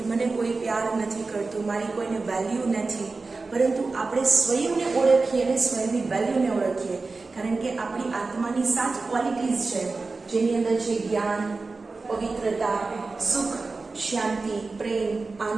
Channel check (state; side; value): quieter; left; 3.8 dB